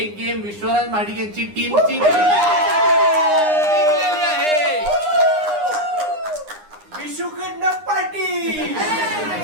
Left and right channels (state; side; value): late; left; 9.8 ms